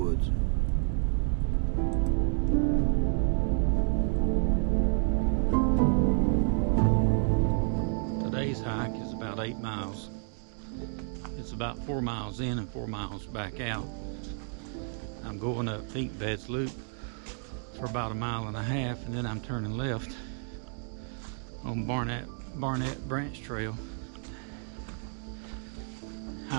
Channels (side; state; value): left; silent; 56 dB below the other